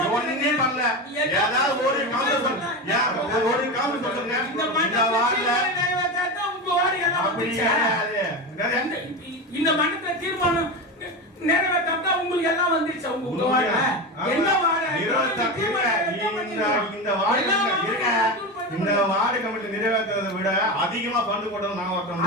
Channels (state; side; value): normal; both; correlation 0.20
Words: ஒண்ணுமே பண்ணல. ஏதாவது ஒரு கவுன்சிலர் ஒரு கவுன்சிலர் சொல்லுங்க. இந்த வார்டுல இந்த மண்டல தீர்மானம் நிறைவேற்றா உங்களுக்கு எல்லாம் வந்துருச்சு. உங்க வார்டு என்ன வார்டு? இந்த வார்டு கமிட்டி நிறைவேற்றதை விட அதிகமா பந்து போட்டது நான் ஒருத்தன்.